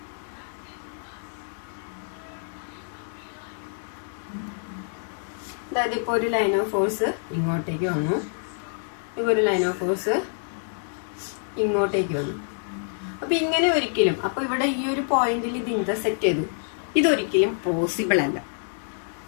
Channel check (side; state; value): right; silent; 60 dB below the other